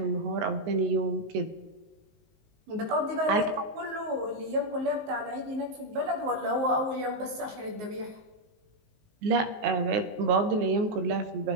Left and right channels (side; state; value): left; late; 19 ms